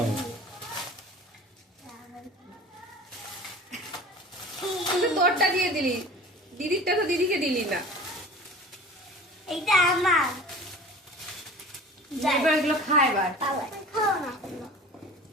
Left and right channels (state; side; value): normal; both; correlation 0.40